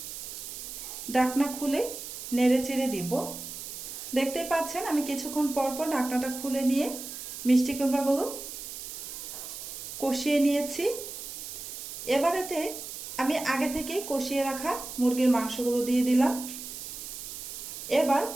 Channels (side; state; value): right; noise; hiss, 9 dB below the sound